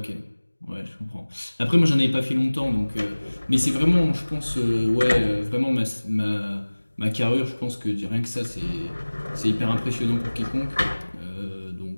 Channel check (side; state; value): both; inverted; correlation -1.00